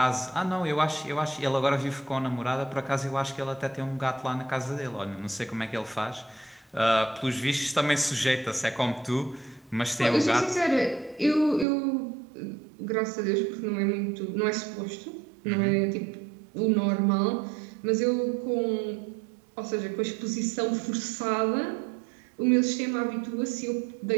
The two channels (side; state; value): left; drops out; at 11.7 s